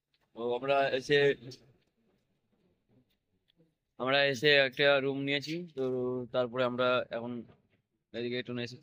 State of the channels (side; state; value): both; identical; correlation 1.00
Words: তো আমরা এসে একটা রুম নিয়েছি। তো তারপরে আমরা এখন এদিকে একটু